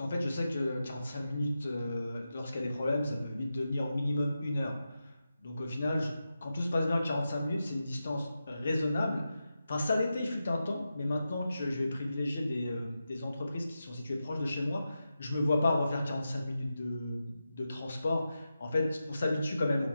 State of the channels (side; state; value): both; inverted; correlation -0.90